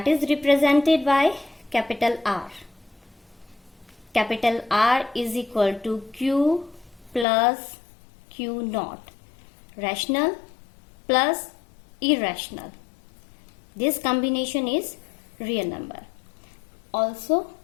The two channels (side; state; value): right; drops out; at 7.2 s